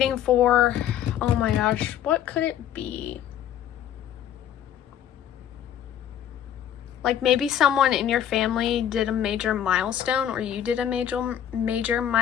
for. Oh my gosh. What could it be? Like maybe someone in your family did a major milestone, or you did a major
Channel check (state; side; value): quieter; right; 10.3 dB